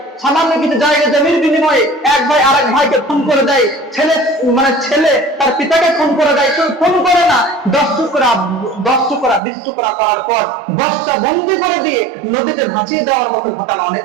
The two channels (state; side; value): drops out; left; at 9.4 s